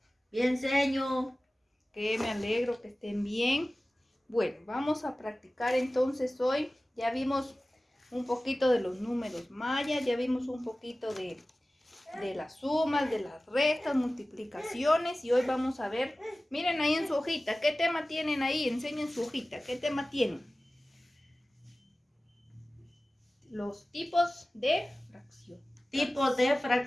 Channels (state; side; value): normal; both; correlation 0.97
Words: bien, señor. Que me alegro que estén bien. Bueno, vamos a practicar entonces hoy. Ya vimos un poquito de los números mayas, ya vimos un poquito de las sumas, de las restas, multiplicaciones y hoy vamos a ver, miren ahí en su hojita, ¿qué tema tienen ahí? Enseñen su hojita, ¿qué tema tienen? Los tipos de fracción. Tipos de